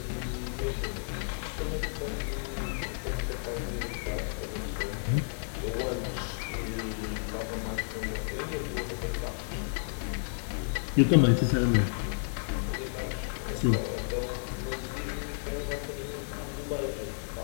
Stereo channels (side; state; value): right; silent; digital silence